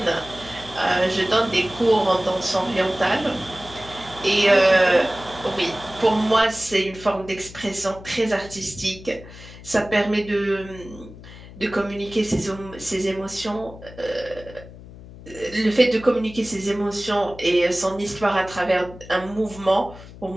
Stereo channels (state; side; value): noise; left; hum, 17 dB below the sound